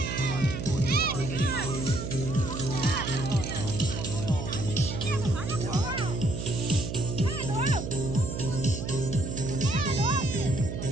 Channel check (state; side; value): noise; right; hum, 5 dB below the sound